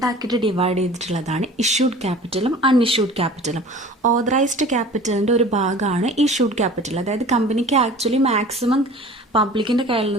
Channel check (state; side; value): normal; both; correlation 0.43